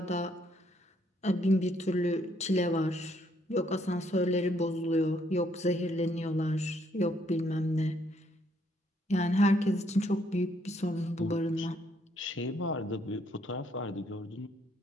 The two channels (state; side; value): normal; both; correlation 0.70